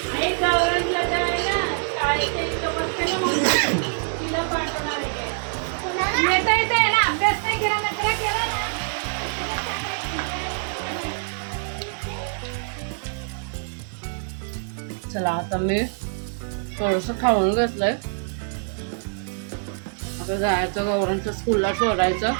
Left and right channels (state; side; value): silent; left; 62 dB below the other